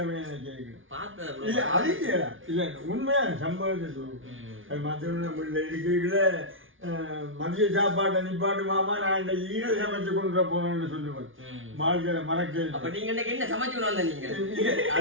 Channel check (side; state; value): left; late; 0.57 ms